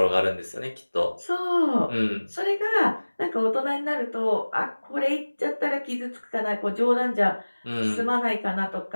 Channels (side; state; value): both; inverted; correlation -1.00